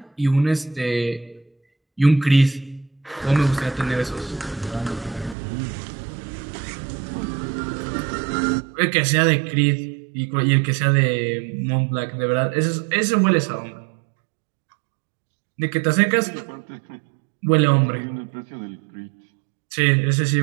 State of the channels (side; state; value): left; drops out; at 5.4 s